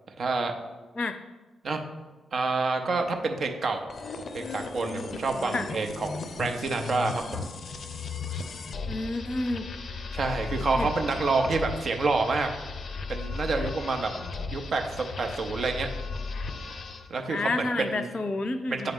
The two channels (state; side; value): normal; both; correlation 0.84